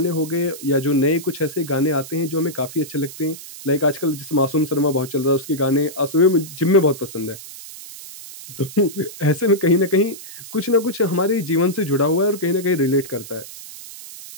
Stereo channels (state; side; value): noise; right; hiss, 14 dB below the sound